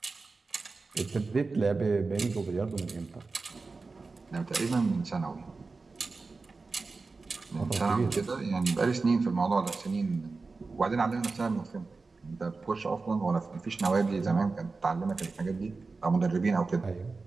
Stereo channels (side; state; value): left; quieter; 4.0 dB